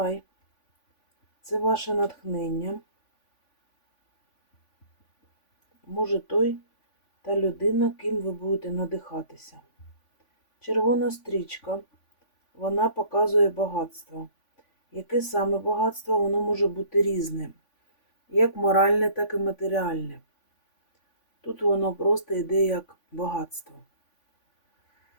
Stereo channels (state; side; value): late; right; 3.5 ms